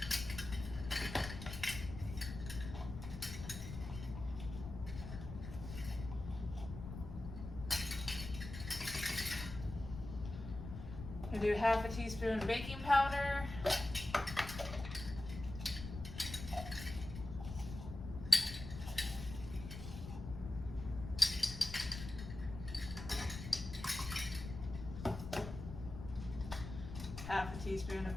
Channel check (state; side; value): noise; left; rumble, 9 dB below the sound